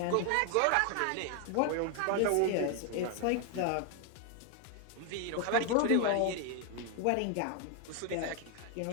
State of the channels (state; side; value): different; both; correlation 0.01